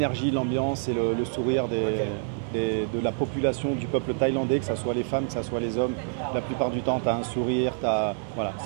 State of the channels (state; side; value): silent; left; 57 dB below the other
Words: l'ambiance et le sourire de la population du peuple thaïlandais, que ce soit les femmes, que ce soit les hommes. La plupart du temps, tu as un sourire, voilà,